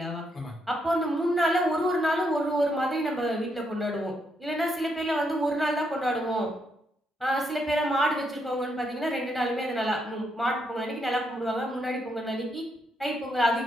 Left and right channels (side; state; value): both; normal; correlation 0.78